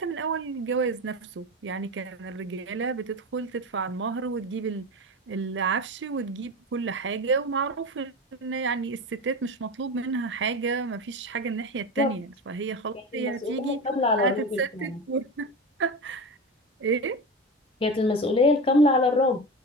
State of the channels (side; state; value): both; normal; correlation 0.24